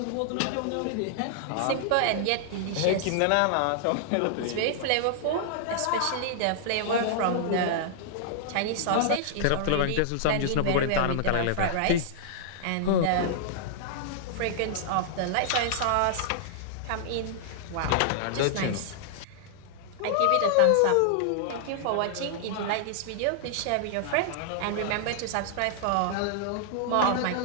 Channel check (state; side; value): different; both; correlation -0.01